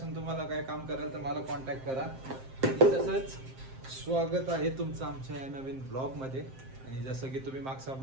तुम्हाला काय काम कराल तर मला कॉन्टॅक्ट करा. आणि तसंच स्वागत आहे तुमचं आमच्या या नवीन ब्लॉगमध्ये. आणि जसं की तुम्ही मागचा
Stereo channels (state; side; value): late; left; 7.6 ms